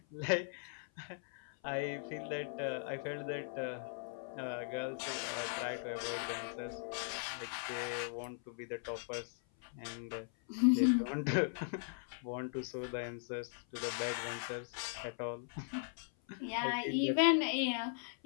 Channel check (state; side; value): silent; right; 52 dB below the other